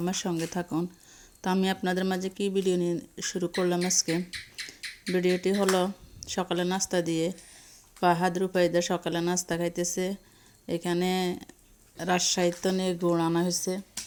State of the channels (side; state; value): both; identical; correlation 1.00